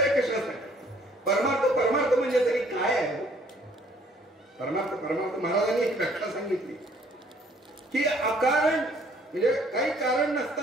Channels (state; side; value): normal; both; correlation 0.60